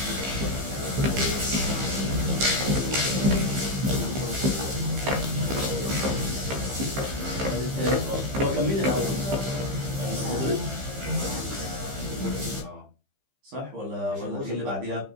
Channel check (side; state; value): left; late; 15 ms